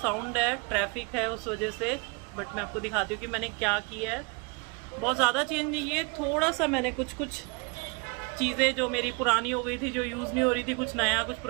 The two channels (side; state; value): left; quieter; 30.6 dB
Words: है, ट्रैफिक है उस वजह से, बट मैं आपको दिखाती हूँ कि मैंने क्या किया है। बहुत ज़्यादा चेंज नहीं है, थोड़ा सा मैंने कुछ चीज़ें जो मेरी पुरानी हो गई थी, जो यूज़ नहीं हो रही थी, कुछ नया कुछ